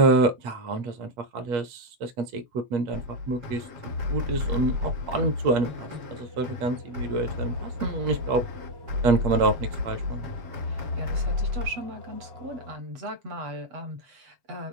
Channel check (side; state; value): left; late; 8.4 ms